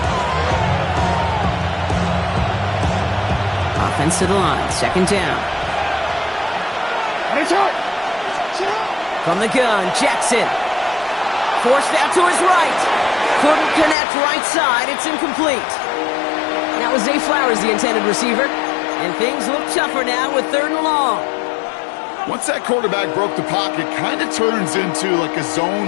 Offense to the line, 2nd down. From the gun, Jackson. Forced out to his right. Couldn't connect right side. It's incomplete. That was Zay Flowers, the intended receiver. And things look tougher now with 3rd and long. Once that quarterback broke the pocket, kind of turns into like a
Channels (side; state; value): right; drops out; at 14.0 s